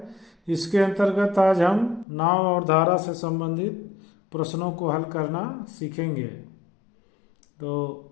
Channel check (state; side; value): drops out; right; at 2.1 s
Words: इसके अंतर्गत आज हम नाव और धारा से संबंधित प्रश्नों को हल करना सीखेंगे। तो